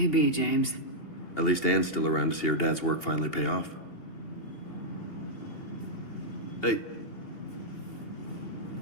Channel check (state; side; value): late; right; 2.8 ms